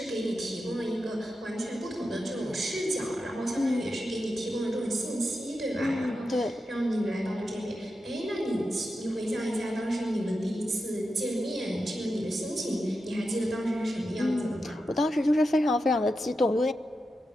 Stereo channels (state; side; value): normal; both; correlation 0.89